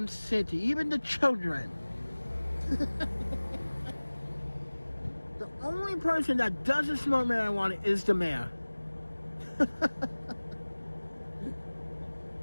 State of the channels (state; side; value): inverted; both; correlation -1.00